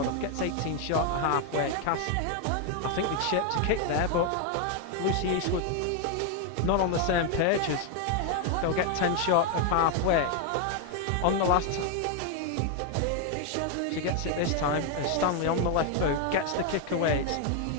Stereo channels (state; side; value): different; both; correlation 0.01